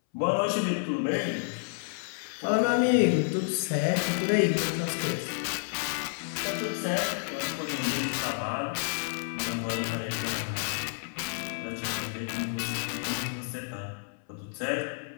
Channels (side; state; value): right; silent; 58 dB below the other